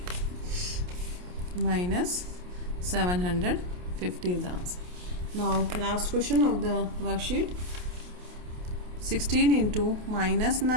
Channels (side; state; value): left; late; 28 ms